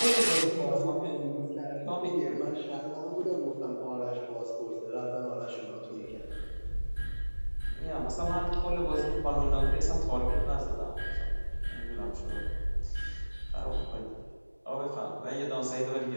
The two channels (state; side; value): inverted; both; correlation -1.00